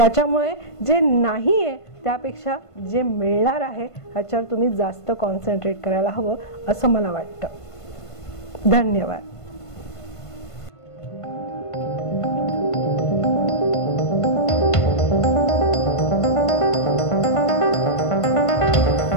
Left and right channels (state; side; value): late; right; 1.5 ms